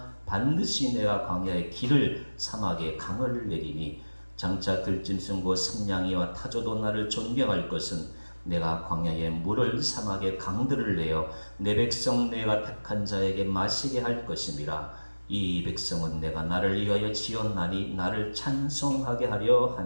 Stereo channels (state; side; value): inverted; both; correlation -1.00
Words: 반드시 내가 광야의 길을 사막에 강을 내리니 장차 들짐승과 승냥이와 타조도 나를 존경할 것은 내가 광야에 물을 사막에 강들을 내어 내 백성 내가 택한 자에게 마시게 할 것임이라. 이 백성은 내가 나를 위하여 지었나니 나를 찬송하게 하려